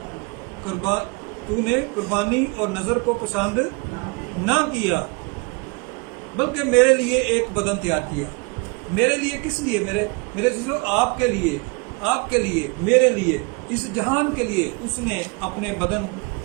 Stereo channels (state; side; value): quieter; left; 30.4 dB